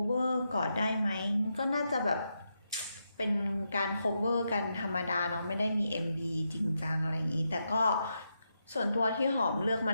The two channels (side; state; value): both; inverted; correlation -0.84